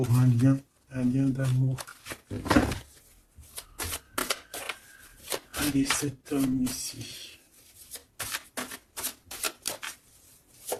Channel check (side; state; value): both; identical; correlation 1.00